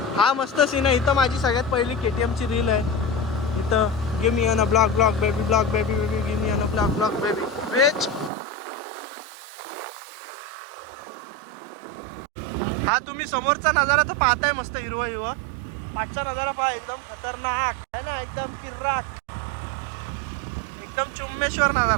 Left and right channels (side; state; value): left; drops out; at 8.3 s